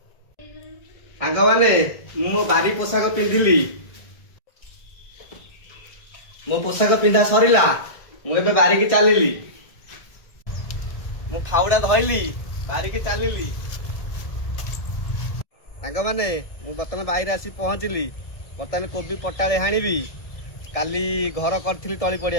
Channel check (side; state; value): right; late; 1.6 ms